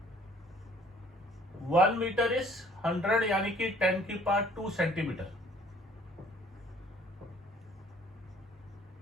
One metre is 100 यानी कि 10 की power 2 centimetre.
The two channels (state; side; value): normal; both; correlation 0.56